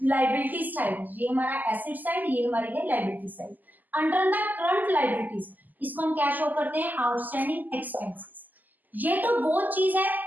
लाइबिलिटी साइड, ये हमारा एसेट साइड, ये हमारी है liability side. Under the current liabilities, इसको हम क्या शो करते हैं, आउटस्टैंडिंग एक्सपेंसेस। ये तो वो चीज है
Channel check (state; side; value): late; left; 0.084 ms